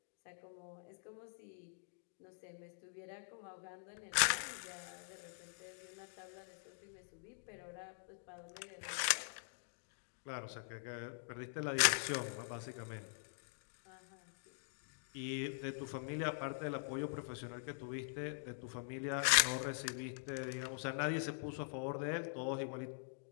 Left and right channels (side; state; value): right; silent; digital silence